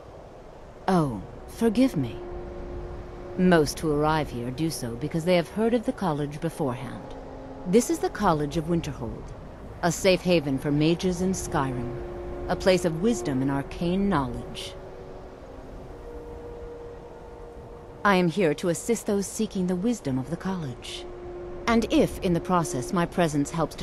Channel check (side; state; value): both; identical; correlation 1.00